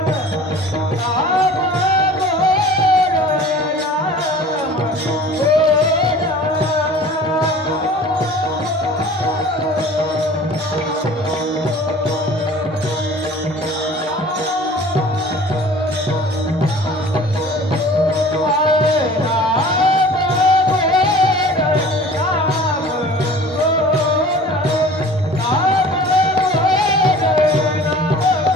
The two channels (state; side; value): normal; both; correlation 0.45